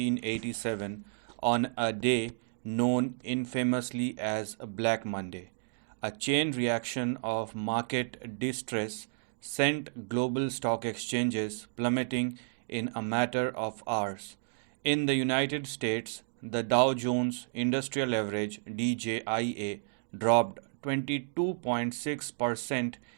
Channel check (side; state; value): left; silent; digital silence